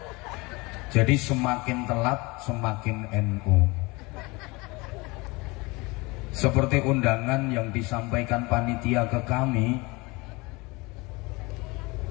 Jadi semakin telat semakin NU. Seperti undangan yang disampaikan panitia ke kami,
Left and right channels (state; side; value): quieter; right; 24.9 dB